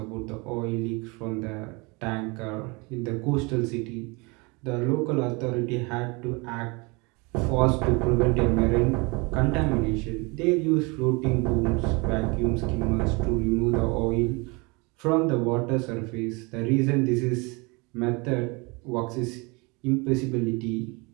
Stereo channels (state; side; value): quieter; left; 28.1 dB